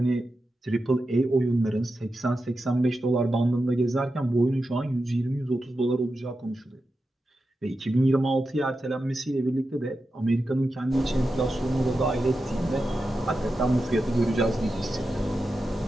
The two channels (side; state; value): both; normal; correlation 0.90